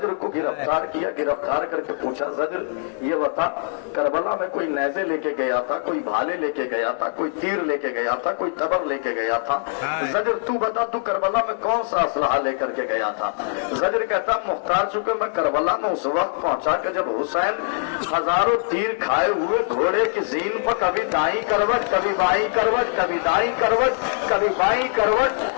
کو گرفتار کیا. گرفتار کر کے پوچھا زجر یہ بتا کربلا میں کوئی نیزے لے کے گیا تھا, کوئی بھالے لے کے گیا تھا, کوئی تیر لے کے گیا تھا, کوئی تبر لے کے گیا تھا. زجر تو بتا تو کربلا میں کون سا اسلحہ لے کر کے گیا تھا. زجر کہتا مختار چونکہ میں کربلا میں اس وقت پہنچا کہ جب حسین ہزاروں تیر کھائے ہوئے گھوڑے کی زین پر کبھی دائیں کروٹ کبھی بائیں کروٹ کبھی دائیں کروٹ کبھی بائیں کروٹ,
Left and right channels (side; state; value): right; silent; digital silence